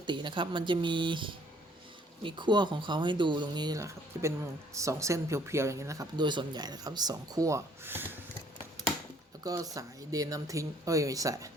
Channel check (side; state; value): both; normal; correlation 0.62